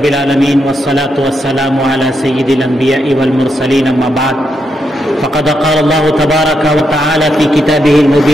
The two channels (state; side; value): normal; both; correlation 0.82